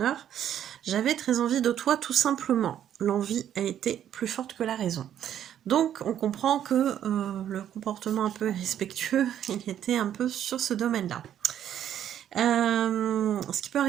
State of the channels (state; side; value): quieter; left; 10.3 dB